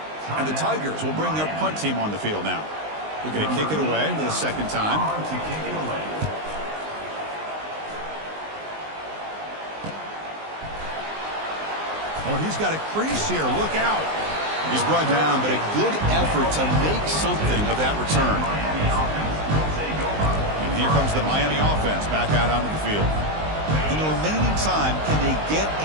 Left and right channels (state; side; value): late; left; 19 ms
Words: And the Tigers will bring their punt team on the field now. They're going to kick it away for the second time. Oh, he's got a crease here. Look out. He's brought down, but a good effort to make something of that return. And here comes the Miami offense back out onto the field. In the remaining time, can they get